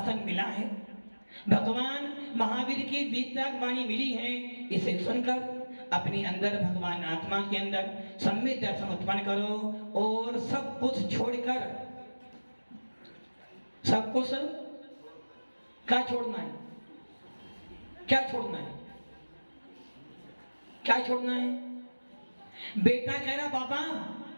मिला है, भगवान महावीर की वीतराग वाणी मिली है। इसे सुनकर अपने अंदर, भगवान आत्मा के अंदर सम्यक दर्शन उत्पन्न करो, और सब कुछ छोड़कर, सब कुछ क्या छोड़ना है? क्या छोड़ना है? क्या छोड़ना है? बेटा कह रहा पापा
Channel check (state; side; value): inverted; both; correlation -1.00